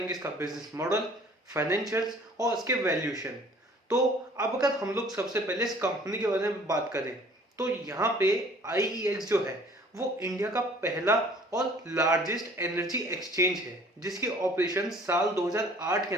इसका बिजनेस मॉडल, फाइनेंशियल्स और इसके वैल्यूएशन। तो अब अगर हम लोग सबसे पहले इस कंपनी के बारे में बात करें, तो यहाँ पे IEX जो है वो इंडिया का पहला और लार्जेस्ट एनर्जी एक्सचेंज है, जिसके ऑपरेशन साल 2008 के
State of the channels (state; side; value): normal; both; correlation 0.52